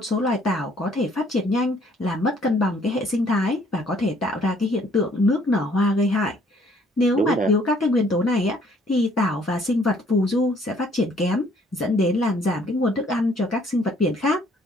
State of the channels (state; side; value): normal; both; correlation 0.61